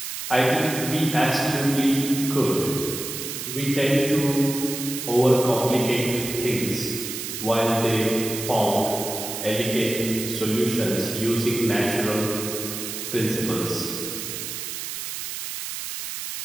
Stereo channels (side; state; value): right; noise; hiss, 6 dB below the sound